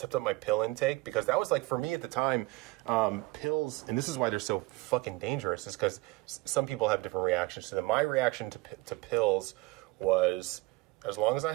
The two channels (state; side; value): quieter; left; 21.8 dB